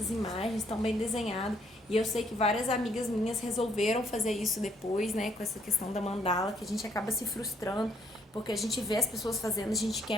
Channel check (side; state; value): both; normal; correlation 0.68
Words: imagens tão bem desenhadas. E eu sei que várias amigas minhas resolveram fazer isso depois, né? Com essa questão da mandala, que a gente acaba se frustrando, porque a gente vê as pessoas fazendo, a gente